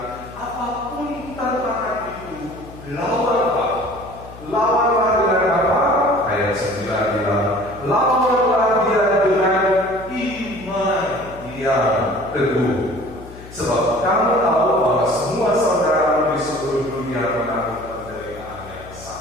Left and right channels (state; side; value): noise; left; hum, 17 dB below the sound